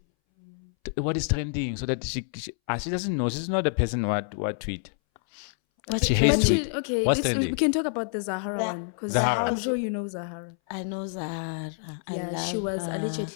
What is trending, so that she doesn't know. She's not the person what tweet. She hates tweet. Okay, What's trending? we can talk about the Zahara one because Zahara. I'm sure you know Zahara. I know Zahara. I love She was her.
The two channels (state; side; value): silent; right; 60 dB below the other